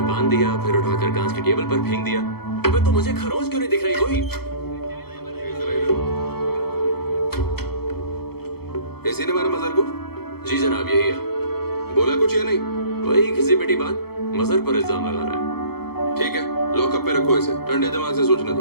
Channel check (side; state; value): right; late; 0.96 ms